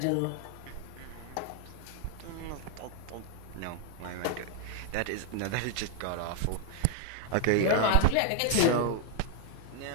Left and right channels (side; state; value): both; different; correlation 0.00